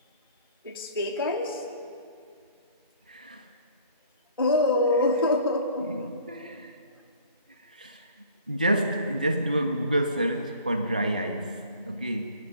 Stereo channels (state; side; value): inverted; both; correlation -0.50